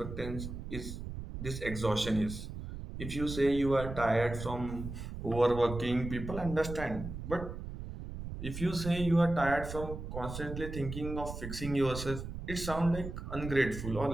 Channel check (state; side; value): noise; right; rumble, 8 dB below the sound